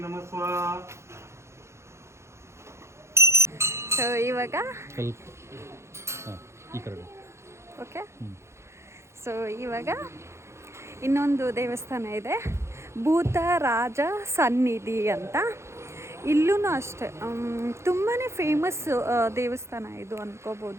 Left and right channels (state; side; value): late; left; 0.13 ms